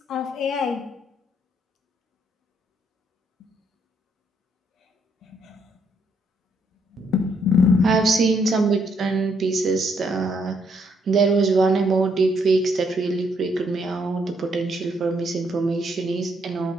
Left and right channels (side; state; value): both; normal; correlation 0.72